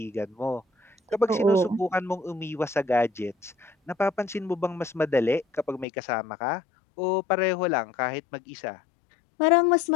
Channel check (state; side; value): drops out; right; at 5.9 s